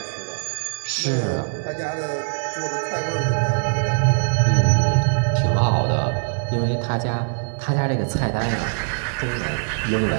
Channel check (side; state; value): left; silent; 64 dB below the other